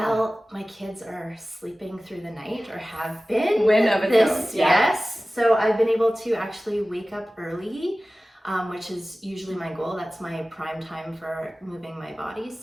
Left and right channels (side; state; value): both; normal; correlation 0.97